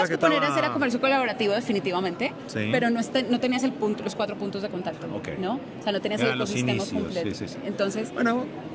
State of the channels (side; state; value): both; identical; correlation 1.00